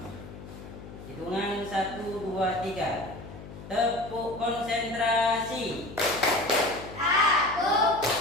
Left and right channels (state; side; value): noise; left; hum, 14 dB below the sound